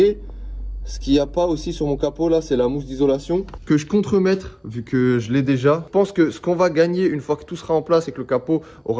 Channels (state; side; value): identical; both; correlation 1.00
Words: ce qu'il n'y a pas aussi sur mon capot là, c'est la mousse d'isolation que je compte remettre vu que je l'ai déjà. Je pense que ce qu'on va gagner une fois que tout sera en place et que le capot